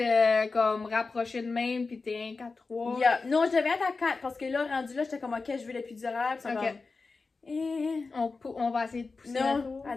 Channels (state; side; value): quieter; right; 4.1 dB